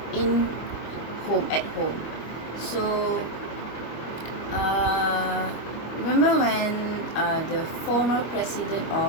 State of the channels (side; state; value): right; late; 25 ms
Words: in at home. So remember when the former president